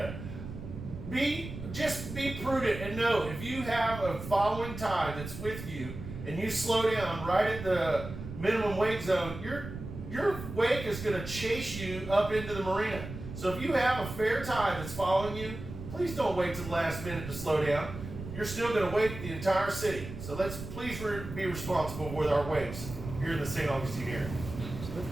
Just be prudent and know if you have a following tide that's with you and you slow down right at the minimum wake zone, your wake is going to chase you up into the marina. So if you have a fair tide that's following you, please don't wait till the last minute to slow down. You're still going to wake the entire city. So let's please be responsible with our wakes here in the St. Augustine area.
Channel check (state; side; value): noise; right; rumble, 10 dB below the sound